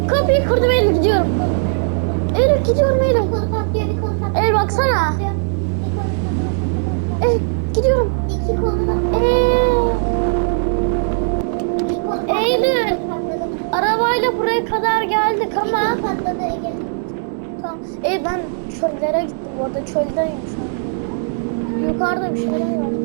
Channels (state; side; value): silent; left; digital silence